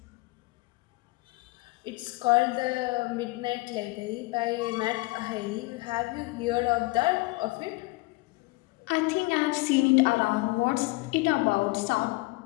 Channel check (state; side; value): quieter; right; 23.2 dB